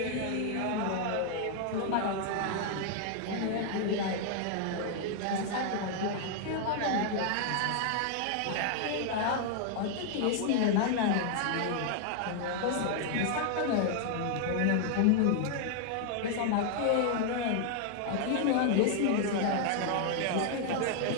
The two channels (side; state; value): both; different; correlation 0.00